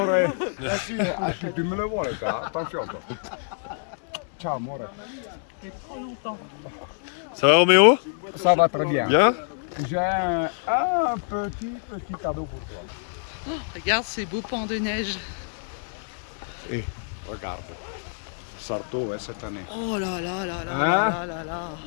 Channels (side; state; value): right; silent; digital silence